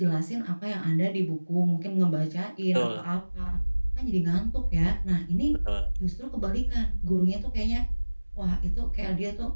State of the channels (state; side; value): inverted; both; correlation -1.00